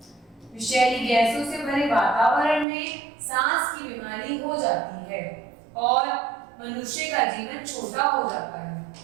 विषैली गैसों से भरे वातावरण में सांस की बीमारी हो जाती है और मनुष्य का जीवन छोटा हो जाता है।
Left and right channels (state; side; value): drops out; left; at 2.7 s